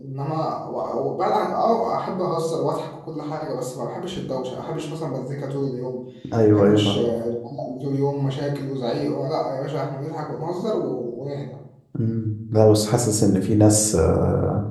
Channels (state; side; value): identical; both; correlation 1.00